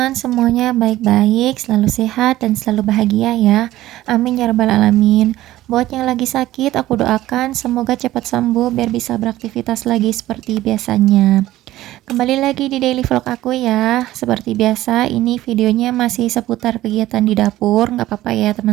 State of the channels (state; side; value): quieter; left; 15.4 dB